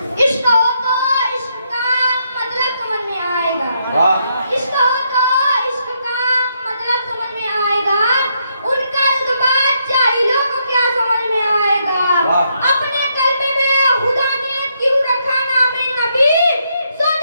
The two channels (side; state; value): both; inverted; correlation -0.77